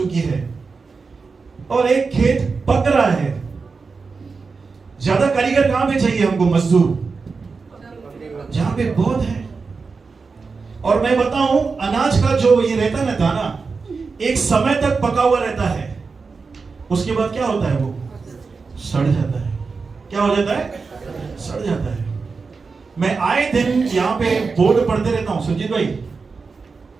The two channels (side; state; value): left; quieter; 4.6 dB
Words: है और एक खेत पक रहा है। ज्यादा कारीगर कहां पे चाहिए हमको? मजदूर जहां पे बहुत है। और मैं बताऊं अनाज का जो ये रहता है ना दाना, एक समय तक पका हुआ रहता है, उसके बाद क्या होता है? वो सड़ जाता है। क्या हो जाता है? सड़ जाता है। मैं आए दिन यहां पे बोर्ड पढ़ते रहता हूं, सुजीत भाई,